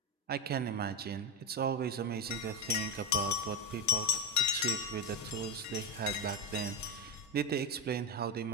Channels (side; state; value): both; normal; correlation 0.11